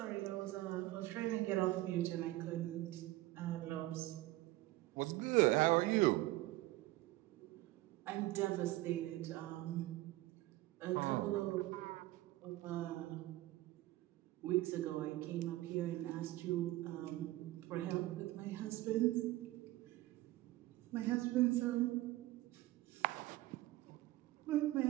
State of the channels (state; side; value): quieter; left; 17.5 dB